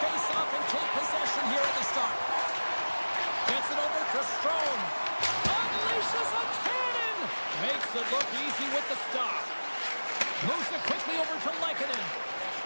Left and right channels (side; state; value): both; inverted; correlation -1.00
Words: and take possession here at the start. Gets it over to Strome. Unleashes a cannon. Makes it look easy with the stop. Moves it quickly over to Lehkonen.